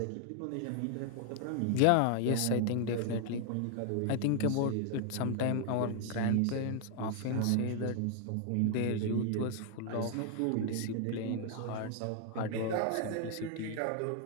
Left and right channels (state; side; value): different; both; correlation 0.00